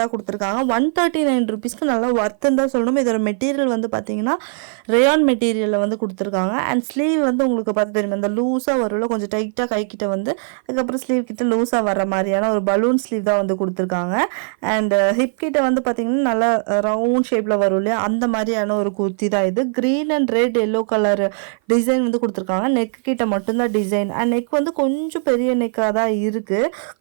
கொடுத்துருக்காங்க. 139 ருபீஸ்க்கு நல்லா ஒர்த்துன்னு தான் சொல்லணும். இதோட மெட்டீரியல் வந்து பார்த்தீங்கன்னா ரேயான் மெட்டீரியலில் வந்து கொடுத்துருக்காங்க. அண்ட் ஸ்லீவ் வந்து உங்களுக்கு பார்த்து தெரியும் அந்த லூஸாக வரும்ல, கொஞ்சம் டைட்டாக கைக்கிட்ட வந்து அதுக்கப்புறம் ஸ்லீவ் கிட்ட லூஸாக வர மாதிரியான ஒரு பலூன் ஸ்லீவ் தான் வந்து கொடுத்துருக்காங்க. அண்ட் ஹிப் கிட்ட வந்து பார்த்தீங்கன்னா நல்லா ரவுண்ட் ஷேப்பில் வரும் இல்லையா, அந்த மாதிரியான ஒரு குர்த்தி தான் இது. Green and red yellow colour design வந்து கொடுத்துருக்காங்க. நெக் கிட்ட மட்டும்தான் டிசைன். அண்ட் நெக் வந்து கொஞ்சம் பெரிய நெக்காக தான் இருக்குது.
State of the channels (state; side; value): silent; left; 56 dB below the other